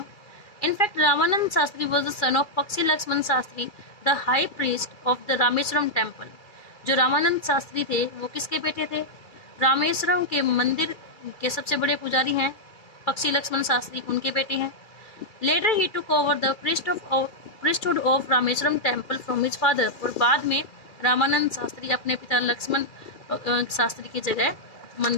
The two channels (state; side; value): late; right; 2.3 ms